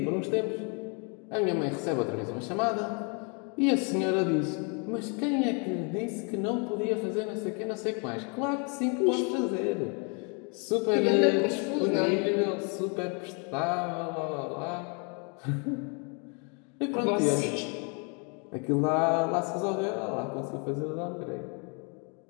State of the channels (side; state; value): right; quieter; 35.7 dB